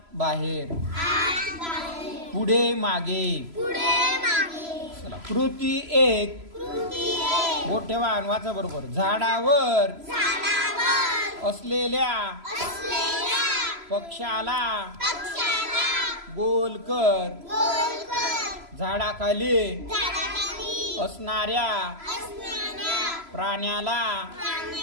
बाहेर पुढे मागे चला कृती एक बोट ठेवा आणि वाचा बरोबर झाडावर असलेल्या पक्षाला गोल कर झाडाखाली असणाऱ्या प्राण्याला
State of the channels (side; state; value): left; late; 3.0 ms